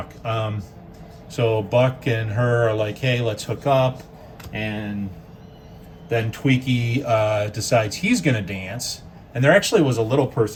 So Buck and her are like, hey, let's hook up, and then Tweaky decides he's gonna dance, and there actually was a little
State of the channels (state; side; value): identical; both; correlation 1.00